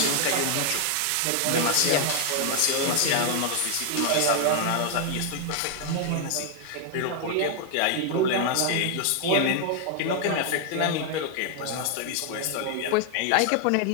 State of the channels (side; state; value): both; different; correlation 0.00